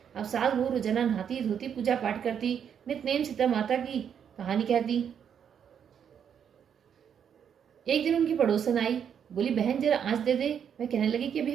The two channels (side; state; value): left; quieter; 8.1 dB